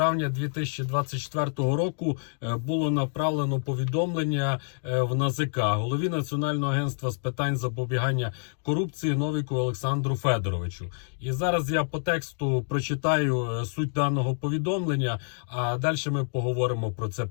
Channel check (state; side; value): silent; right; 60 dB below the other